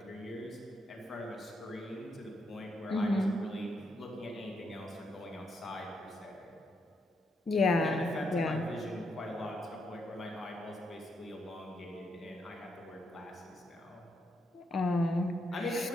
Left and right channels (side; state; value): both; normal; correlation 0.79